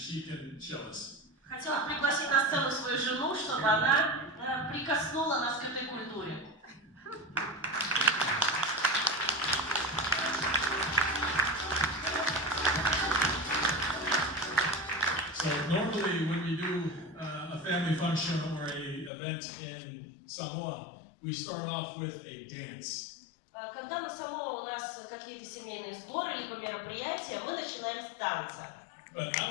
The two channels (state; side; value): drops out; right; at 19.1 s